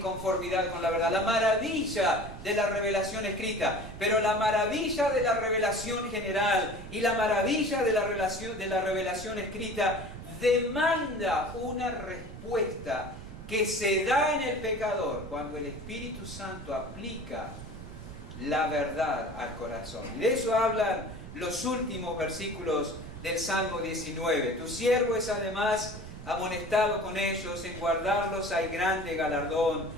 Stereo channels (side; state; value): right; noise; rumble, 12 dB below the sound